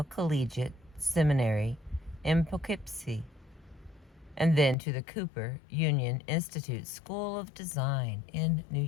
Collegiate Seminary in Poughkeepsie, and then to the Cooper Union Institute School of Design in New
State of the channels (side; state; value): right; drops out; at 4.8 s